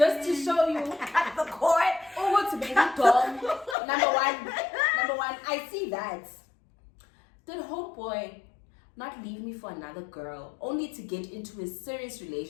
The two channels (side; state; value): right; drops out; at 3.8 s